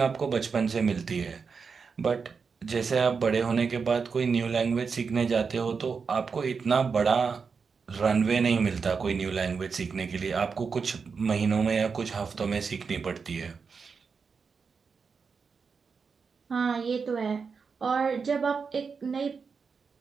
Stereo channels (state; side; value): quieter; left; 5.4 dB